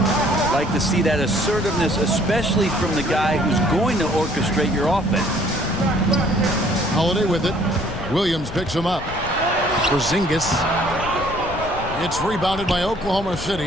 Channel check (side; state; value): left; noise; rumble, 11 dB below the sound